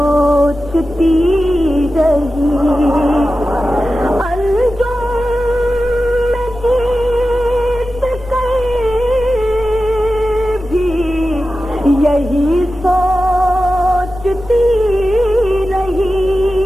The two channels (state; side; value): noise; right; hum, 18 dB below the sound